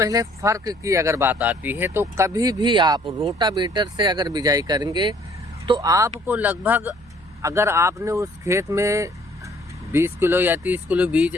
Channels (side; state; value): right; noise; hum, 26 dB below the sound